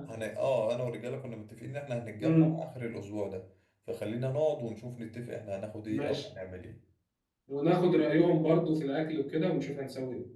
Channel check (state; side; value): identical; both; correlation 1.00